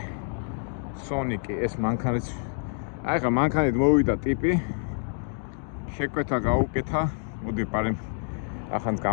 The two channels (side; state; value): right; silent; 60 dB below the other